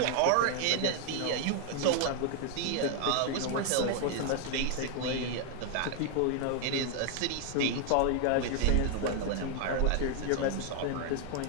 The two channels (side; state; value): both; different; correlation 0.00